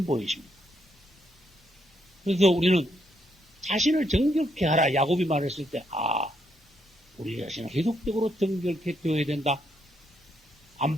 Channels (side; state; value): both; normal; correlation 0.76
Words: 보이십니다. 그래서 우리는 자신을 정결케 하라 야곱이 말했을 때 우리 자신은 계속적으로 정결케 되어야 된다.